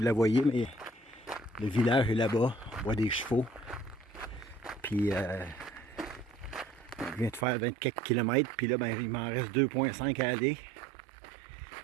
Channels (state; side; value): drops out; left; at 7.5 s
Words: la voyez, mais le village est là-bas. On voit des chevaux. Puis, je viens de faire 24 km. Puis là, ben, il m'en reste 2,5 à aller.